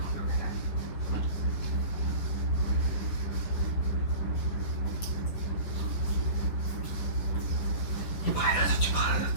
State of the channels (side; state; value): right; late; 10 ms